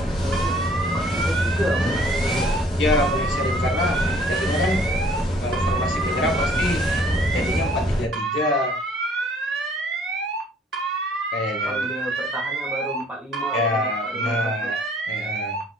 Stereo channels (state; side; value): normal; both; correlation 0.57